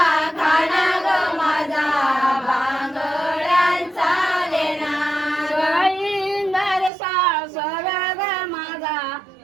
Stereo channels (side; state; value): left; drops out; at 6.9 s